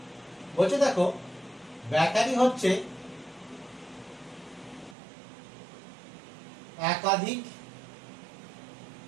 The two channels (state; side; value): drops out; left; at 5.0 s